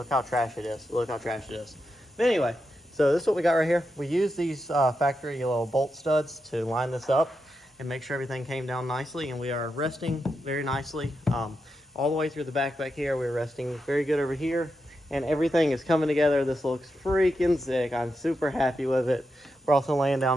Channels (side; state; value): both; normal; correlation 0.86